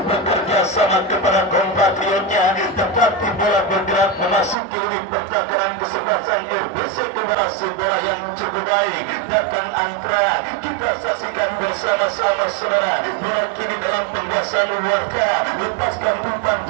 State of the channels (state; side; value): drops out; left; at 4.5 s